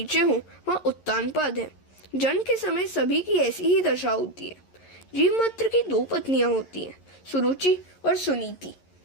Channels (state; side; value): late; right; 11 ms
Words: हों वहाँ उत्तानपाद है। जन्म के समय सभी की ऐसी ही दशा होती है। जीव मात्र की 2 पत्नियां होती हैं, सुरुचि और सुनीति।